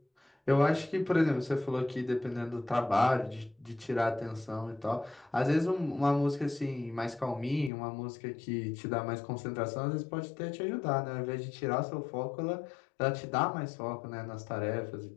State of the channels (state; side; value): drops out; right; at 7.7 s